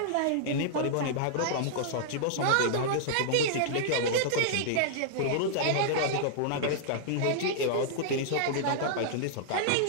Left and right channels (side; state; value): both; different; correlation -0.01